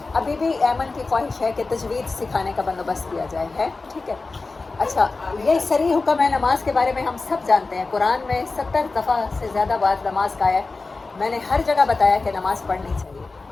ابھی بھی ایمن کی خواہش ہے کہ تجوید سکھانے کا بندوبست کیا جائے، ہے ٹھیک ہے. اچھا، یہ صریح حکم ہے نماز کے بارے میں، ہم سب جانتے ہیں. قرآن میں 70 دفعہ سے زیادہ بار نماز کا ہے. میں نے ہر جگہ بتایا کہ نماز پڑھنی چاہیے،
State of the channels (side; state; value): right; quieter; 3.7 dB